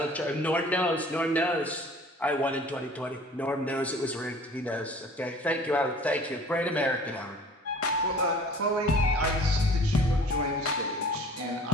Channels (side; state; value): both; normal; correlation 0.48